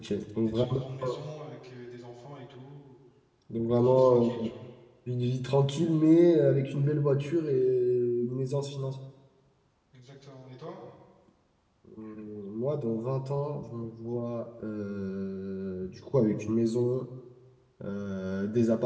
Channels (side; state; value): both; identical; correlation 1.00